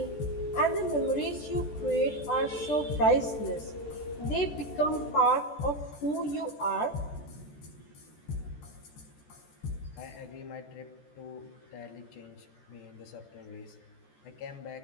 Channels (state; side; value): late; right; 14 ms